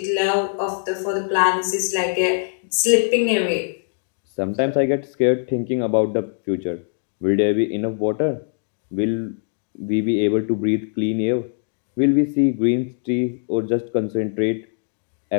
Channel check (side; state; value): right; silent; digital silence